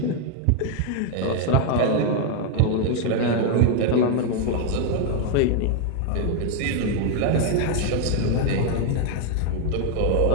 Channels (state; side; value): different; both; correlation 0.00